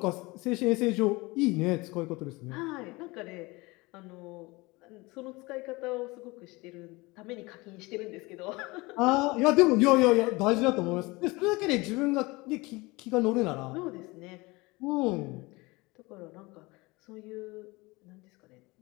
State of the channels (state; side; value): quieter; right; 23.4 dB